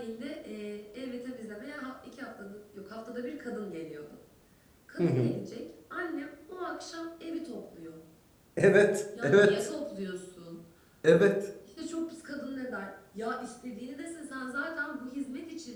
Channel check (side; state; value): both; identical; correlation 1.00